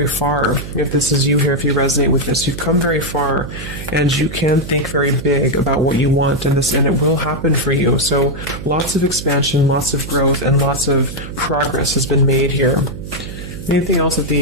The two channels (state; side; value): noise; right; hum, 10 dB below the sound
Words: far. If this is you here, if you resonate with this, you've come very far, and you can think very big about what you want, and it will happen for you. So lots of expansion, lots of growth, and lots of progress has been made here. Anything else that